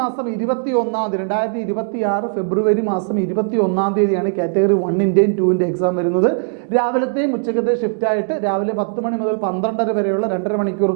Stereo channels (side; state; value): left; silent; digital silence